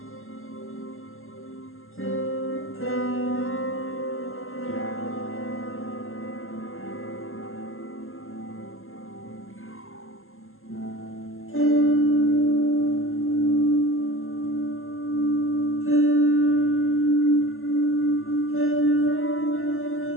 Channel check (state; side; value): late; right; 0.61 ms